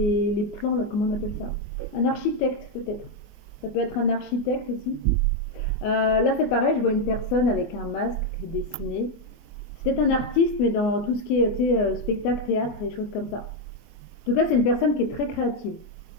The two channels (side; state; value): right; late; 24 ms